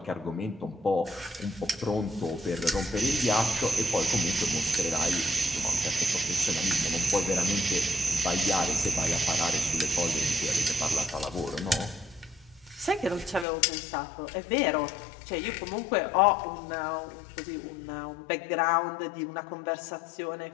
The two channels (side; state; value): right; drops out; at 13.5 s